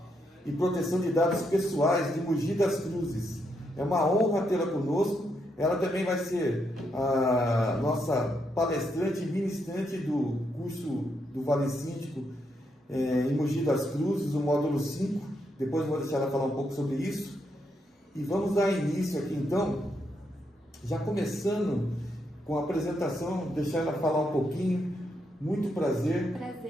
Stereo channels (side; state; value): both; normal; correlation 0.79